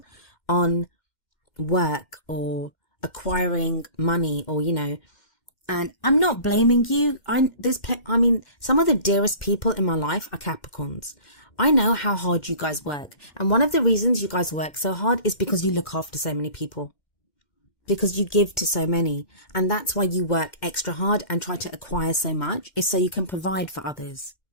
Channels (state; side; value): late; right; 2.1 ms